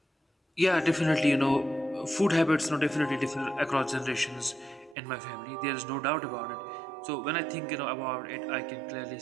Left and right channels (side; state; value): left; drops out; at 5.0 s